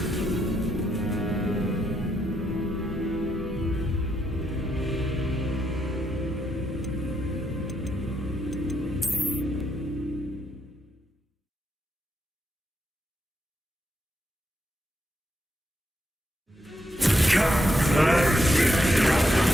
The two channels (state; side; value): normal; both; correlation 0.80